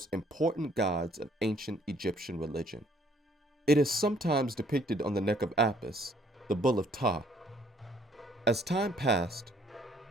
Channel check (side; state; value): both; normal; correlation 0.63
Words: important gods of ancient Egyptian religion. It is sometimes depicted on the neck of Apis, the bull of Ptah. As time passed,